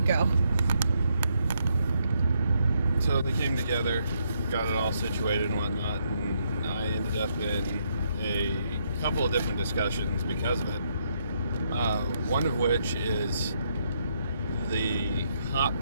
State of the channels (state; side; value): inverted; both; correlation -0.75